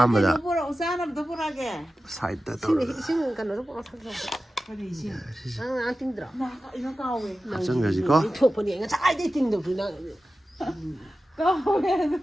mà đã Nó bora usana nó bora cái. side đó Xin cái nó bora thằng. ꯀꯔꯤ ꯏꯁꯤꯡ ꯅꯪ ꯇꯤꯡꯗ꯭ꯔꯣ ꯑꯩꯅ ꯀꯥꯎꯋꯦ ꯍꯥꯞꯆꯟꯈ꯭ꯔꯁꯤꯀꯣ ꯊꯣꯛꯄꯅꯦ ꯉꯁꯥꯏꯗꯩ ꯇꯤꯡꯗꯕꯁꯨ ꯅꯪ ꯀꯥꯎꯋꯦ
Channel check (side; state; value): both; normal; correlation 0.94